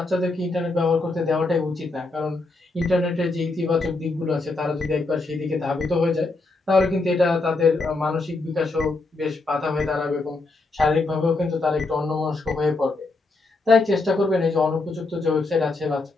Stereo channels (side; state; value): right; quieter; 3.3 dB